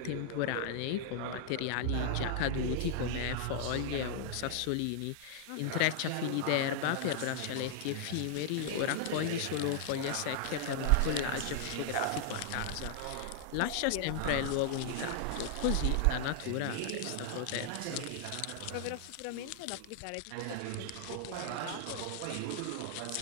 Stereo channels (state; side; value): different; both; correlation 0.00